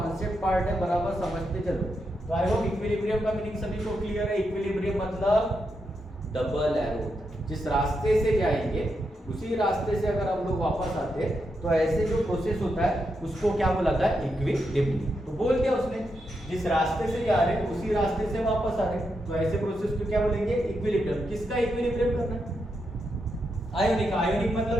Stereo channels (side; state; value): both; normal; correlation 0.84